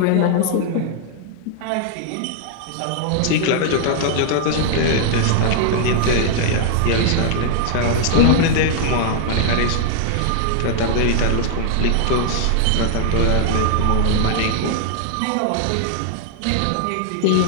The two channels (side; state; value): both; different; correlation 0.00